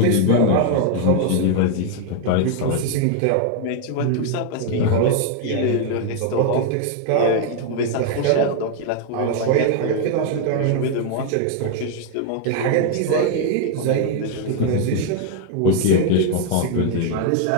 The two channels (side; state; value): both; different; correlation 0.00